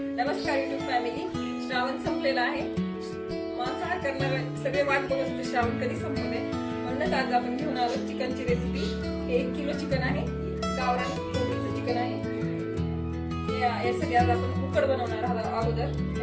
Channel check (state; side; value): identical; both; correlation 1.00